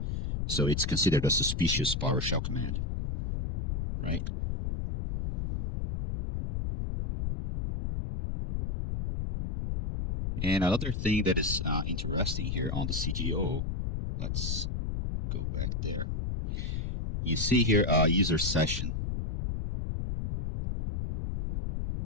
So it's considered a suspicious PowerShell command, right? And another thing that is interesting here on the CGO, let's go back there. You see here user session.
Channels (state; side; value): noise; left; rumble, 2 dB below the sound